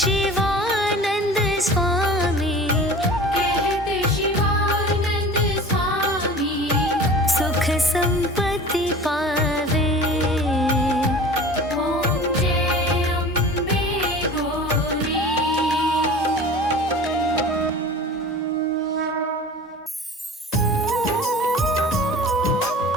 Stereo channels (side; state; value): both; normal; correlation 0.39